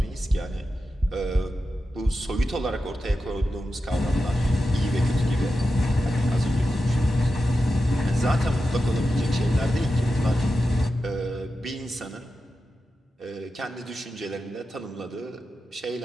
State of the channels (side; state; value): both; normal; correlation 0.91